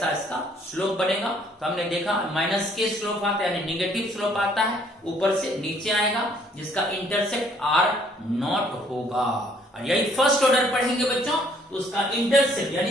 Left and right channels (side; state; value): both; normal; correlation 0.63